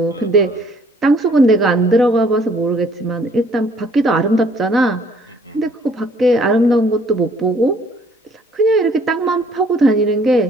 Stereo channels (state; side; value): normal; both; correlation 0.60